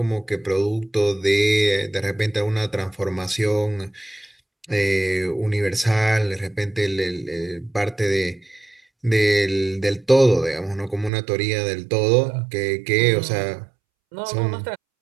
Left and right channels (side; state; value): left; drops out; at 11.1 s